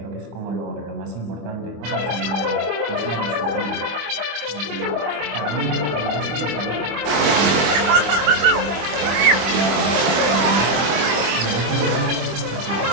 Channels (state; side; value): late; left; 25 ms